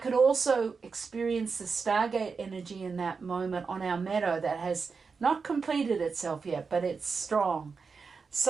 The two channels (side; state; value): left; quieter; 5.0 dB